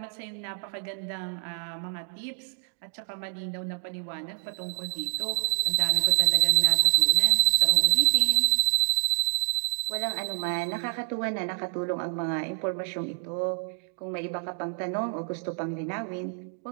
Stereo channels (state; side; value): silent; left; 60 dB below the other